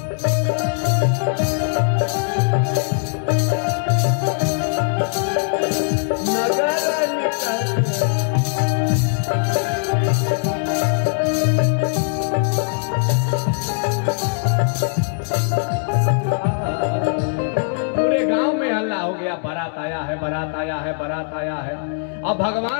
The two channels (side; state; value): right; silent; 65 dB below the other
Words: नगर निकट पूरे गांव में हल्ला हो गया, बारात आया है, बारात आया है, बारात आया है। अब